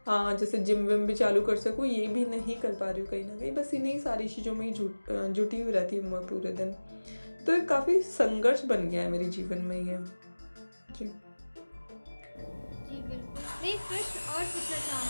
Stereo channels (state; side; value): inverted; both; correlation -1.00